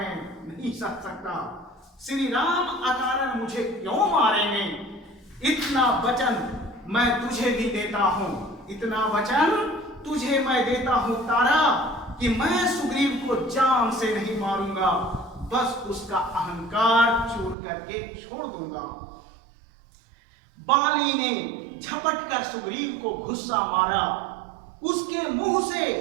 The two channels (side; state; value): left; drops out; at 17.6 s